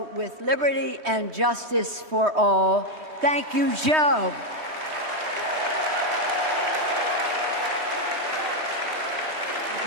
with liberty and justice for all. Thank you, Joe.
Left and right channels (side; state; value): left; late; 3.2 ms